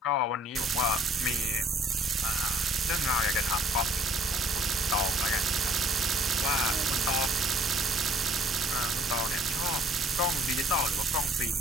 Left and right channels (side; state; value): both; normal; correlation 0.58